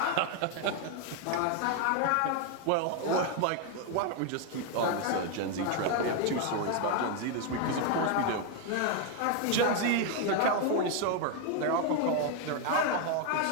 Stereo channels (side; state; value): both; different; correlation 0.01